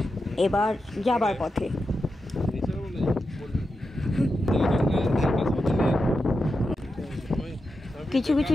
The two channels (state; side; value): normal; both; correlation 0.88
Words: এবার যাবার পথে কিছু কিছু